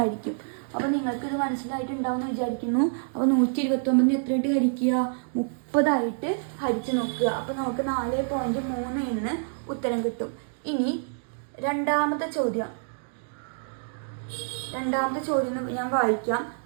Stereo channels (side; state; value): left; silent; digital silence